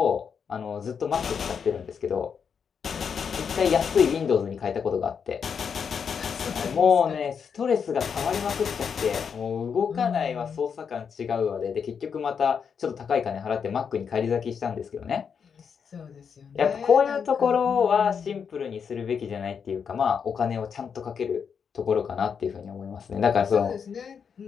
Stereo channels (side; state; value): right; quieter; 6.7 dB